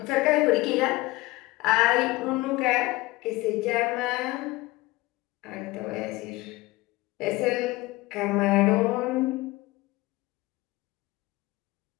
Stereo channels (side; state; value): right; quieter; 20.6 dB